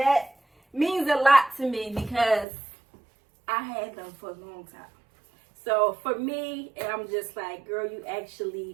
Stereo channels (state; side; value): drops out; left; at 2.5 s